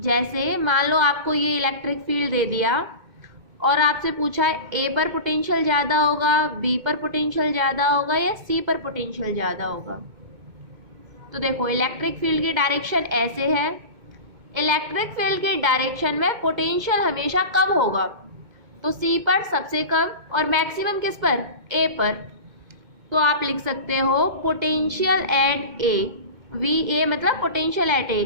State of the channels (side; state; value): left; late; 2.2 ms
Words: मान लो आपको ये इलेक्ट्रिक फील्ड दे दिया और आपसे पूछा है ए पर पोटेंशियल ज़्यादा होगा, बी पर पोटेंशियल ज़्यादा होगा या सी पर पोटेंशियल ज़्यादा होगा। तो देखो इलेक्ट्रिक फील्ड की डायरेक्शन ऐसे है, इलेक्ट्रिक फील्ड की डायरेक्शन में पोटेंशियल हमेशा कम होगा, तो सी पर सबसे कम और मैक्सिमम किस पर, ए पर। तो आप लिख सकते हो potential at A, V A मतलब potential at A